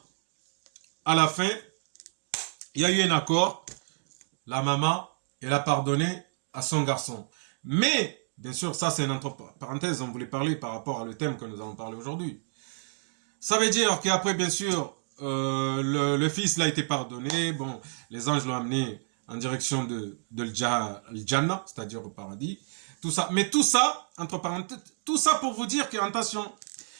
à la fin, il y a eu un accord. La maman, elle a pardonné à son garçon. Mais, bien sûr, ça c'est une entre parenthèses, on voulait parler par rapport à le thème que nous allons parler aujourd'hui. Ça veut dire qu'après, bien sûr, le fils l'a été pardonné. Bon, les anges l'ont amené en direction de Jannah, c'est-à-dire au paradis. Tout ça. Mais tout ça, entre parenthèses, tout ça pour vous dire que, attention,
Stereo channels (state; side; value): silent; left; digital silence